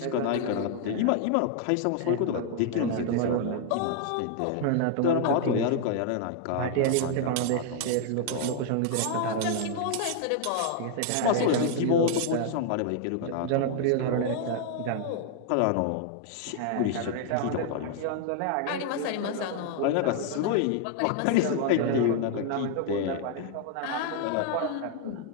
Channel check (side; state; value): both; different; correlation 0.00